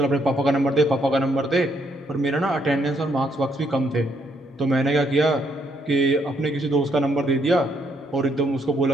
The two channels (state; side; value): normal; both; correlation 0.72